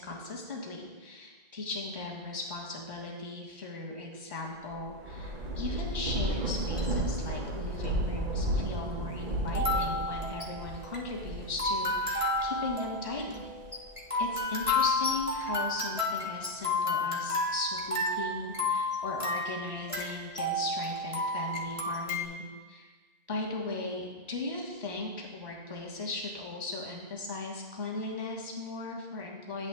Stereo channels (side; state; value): left; late; 1.5 ms